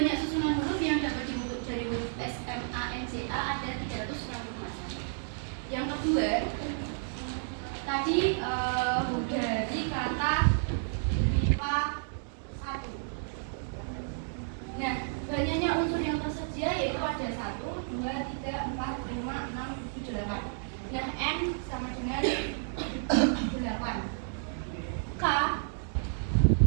susunan huruf yang dapat dibentuk dari huruf S, M, A, N, J, A ada 360 macam. Yang kedua, tadi dari kata MIPA 1. Nah, banyaknya unsur yang tersedia yaitu ada 1, 2, 3, 4, 5, 6, 7, 8. Nah, N sama dengan 8. K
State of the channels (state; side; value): silent; left; digital silence